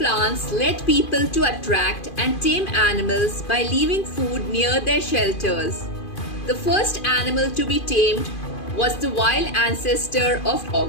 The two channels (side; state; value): right; late; 2.5 ms